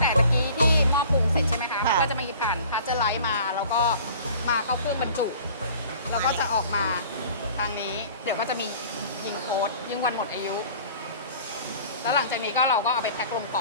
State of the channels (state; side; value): inverted; both; correlation -0.46